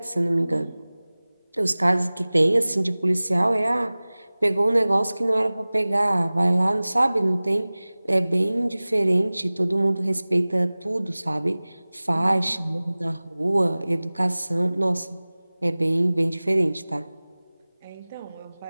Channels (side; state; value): both; inverted; correlation -0.99